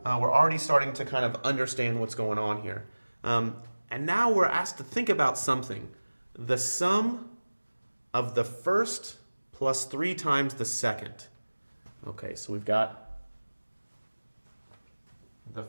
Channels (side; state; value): both; inverted; correlation -1.00